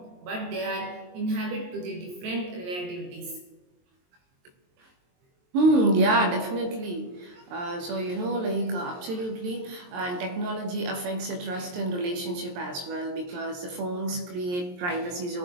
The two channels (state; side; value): late; left; 23 ms